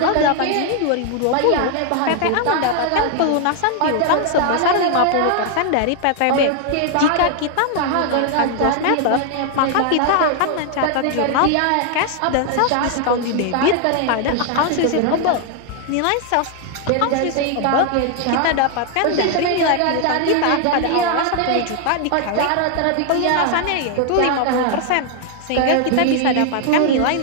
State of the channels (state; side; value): different; both; correlation 0.00